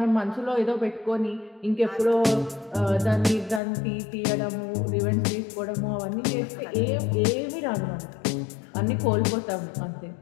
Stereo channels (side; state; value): right; drops out; at 3.6 s